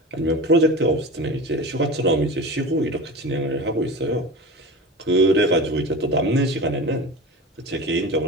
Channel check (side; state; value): both; normal; correlation 0.31